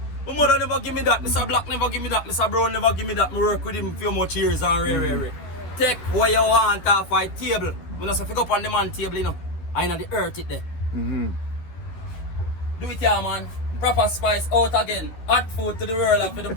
My mother never give me that, Mr. Black never give me that, Mr. Brown never give me that. I work with him a few much years and rare. take what you want off my table. When I say pick up on the man table, you know, I know the earth it there. Mm-hmm. Do it here, man. Proper spice out again. Hot food to the world and for the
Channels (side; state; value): right; late; 13 ms